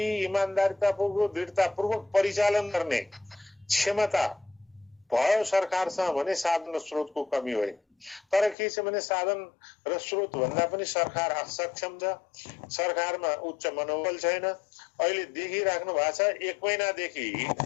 इमान्दारितापूर्वक दृढतापूर्वक परिचालन गर्ने क्षमता भयो सरकारसँग भने साधन र स्रोतको कमी होइन। तर के छ भने साधन र स्रोत भन्दा पनि सरकार असक्षम छ, सरकारमा उच्च मनोबल छैन। अहिले देखिराख्नु भएको छ 1 महिनादेखि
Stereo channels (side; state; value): right; drops out; at 8.6 s